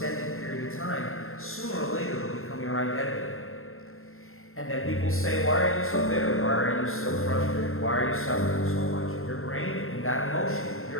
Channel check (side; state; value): right; late; 0.61 ms